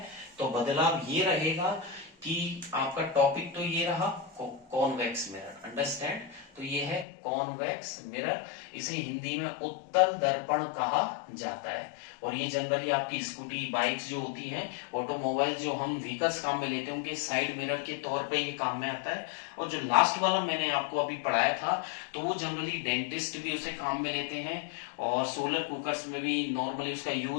तो बदलाव ये रहेगा कि आपका टॉपिक तो ये रहा कॉन्वेक्स मिरर। अंडरस्टैंड? तो ये है कॉन्वेक्स मिरर। इसे हिंदी में उत्तल दर्पण कहा जाता है। और ये जनरली आपकी स्कूटी, बाइक्स जो होती हैं, ऑटोमोबाइल जो हम व्हीकल्स काम में लेते हैं, उनके साइड मिरर के तौर पे ये काम में आता है। और जो लास्ट वाला मैंने आपको अभी पढ़ाया था, तो वो जनरली डेंटिस्ट भी उसे काम में लेते हैं, और सोलर कुकर्स में भी नॉर्मली उसका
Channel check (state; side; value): drops out; right; at 7.1 s